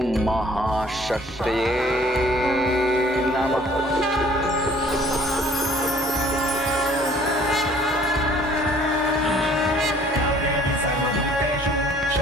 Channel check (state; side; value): normal; both; correlation 0.55